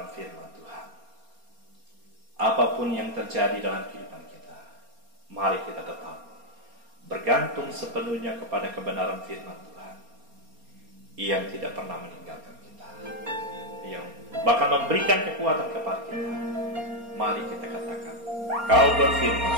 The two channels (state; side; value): late; left; 4.3 ms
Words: firman Tuhan. Apapun yang terjadi dalam kehidupan kita, mari kita tetap bergantung sepenuhnya kepada kebenaran firman Tuhan yang tidak pernah meninggalkan kita, yang bahkan memberikan kekuatan kepada kita. Mari kita katakan, Kau berfirman,